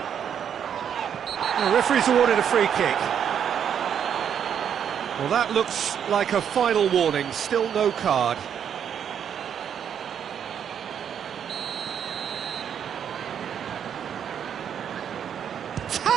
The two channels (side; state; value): left; quieter; 8.5 dB